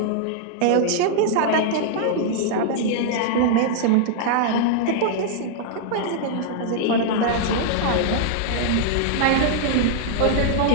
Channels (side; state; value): both; different; correlation -0.01